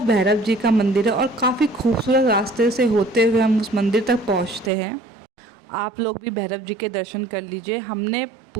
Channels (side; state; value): left; drops out; at 4.7 s